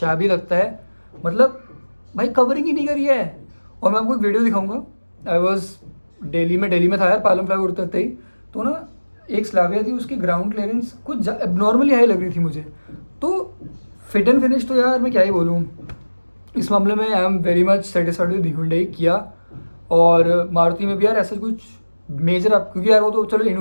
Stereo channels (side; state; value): both; inverted; correlation -1.00